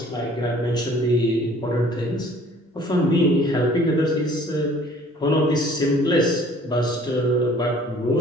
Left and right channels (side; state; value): both; normal; correlation 0.53